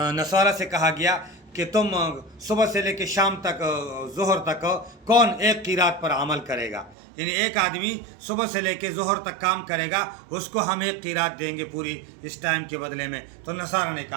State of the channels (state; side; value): drops out; left; at 7.0 s